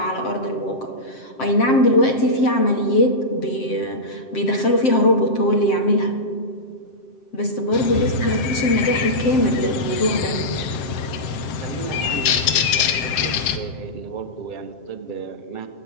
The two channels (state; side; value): late; right; 7.6 ms